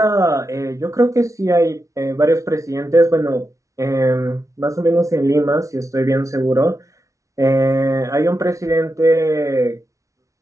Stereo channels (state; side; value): late; left; 0.15 ms